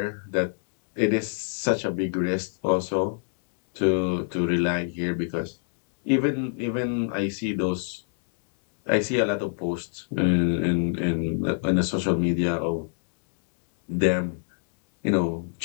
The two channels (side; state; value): right; silent; digital silence